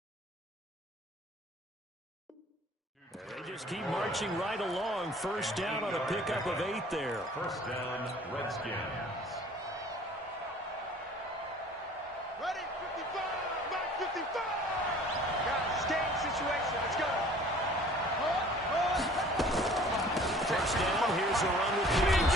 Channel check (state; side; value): normal; both; correlation 0.50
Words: And they just keep marching right along. First down on a pickup of 8 there. First down, Redskins. Ready? 55. Back 55. Got a game situation. Let's go. First down, here's a run with